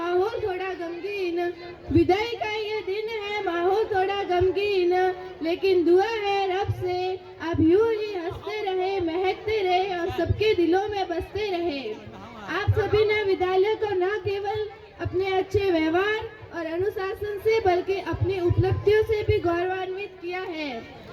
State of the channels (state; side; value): identical; both; correlation 1.00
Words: थोड़ा गमगीन, विदाई का ये दिन है माहौल थोड़ा गमगीन, लेकिन दुआ है रब से आप यूं ही हंसते रहे, महकते रहे और सबके दिलों में बसते रहे। आप सभी ने विद्यालय को न केवल अपने अच्छे व्यवहार और अनुशासन से बल्कि अपनी उपलब्धियों से भी गौरवान्वित किया है।